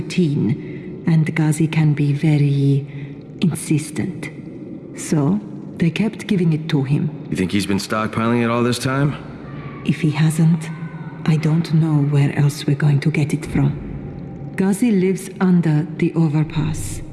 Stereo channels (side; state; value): both; identical; correlation 1.00